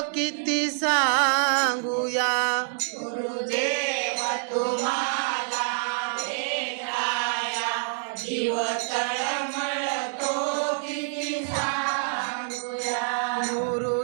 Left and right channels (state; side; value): silent; left; digital silence